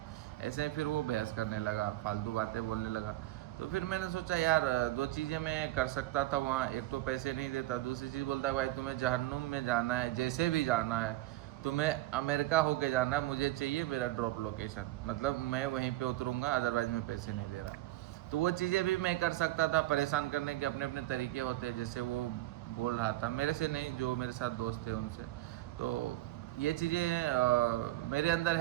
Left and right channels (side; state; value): left; quieter; 16.6 dB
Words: ऐसे फिर वो बहस करने लगा, फालतू बातें बोलने लगा। तो फिर मैंने सोचा यार दो चीज़ें मैं कर सकता था वहाँ, एक तो पैसे नहीं देता, दूसरी चीज़ बोलता भाई तुम्हें जहन्नुम में जाना है, जैसे भी जाना है तुम्हें अमेरिका होके जाना है, मुझे चाहिए मेरा ड्रॉप लोकेशन, मतलब मैं वहीं पे उतरूँगा, अदरवाइज़ मैं पैसे नहीं दे रहा। तो वो चीज़ें भी मैं कर सकता था, परेशान करने के अपने अपने तरीके होते हैं, जैसे वो बोल रहा था मेरे से नहीं, जो मेरे साथ दोस्त थे उनसे। तो ये चीज़ें मेरे अंदर